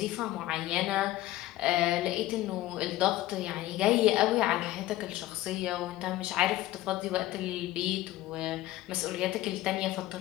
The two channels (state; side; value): quieter; right; 15.9 dB